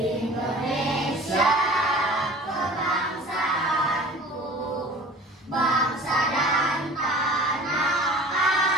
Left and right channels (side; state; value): both; normal; correlation 0.44